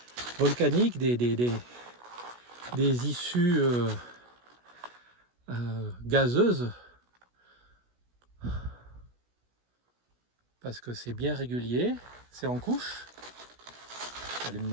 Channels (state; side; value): late; left; 16 ms